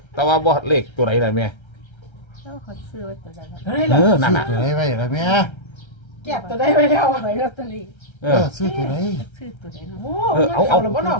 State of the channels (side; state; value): right; late; 1.3 ms